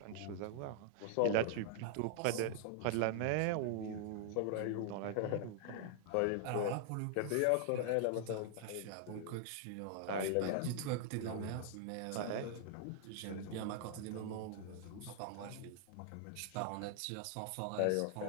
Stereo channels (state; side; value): different; both; correlation 0.00